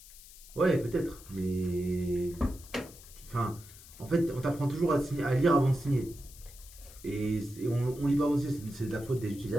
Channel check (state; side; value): noise; left; hiss, 19 dB below the sound